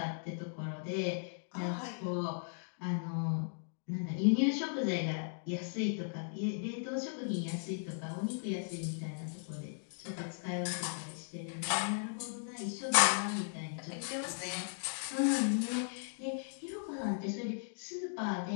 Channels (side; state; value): right; silent; digital silence